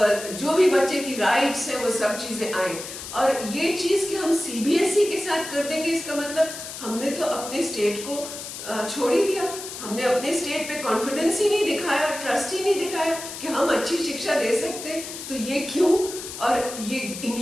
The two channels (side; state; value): left; noise; hiss, 10 dB below the sound